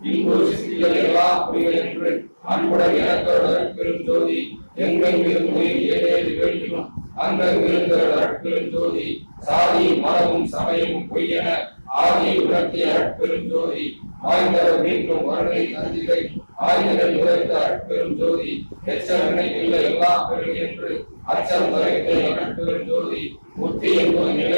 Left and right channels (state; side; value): inverted; both; correlation -1.00